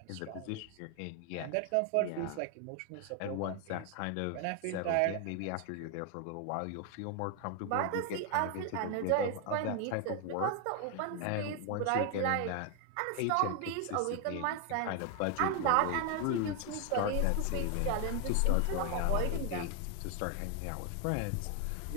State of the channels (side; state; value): both; different; correlation 0.01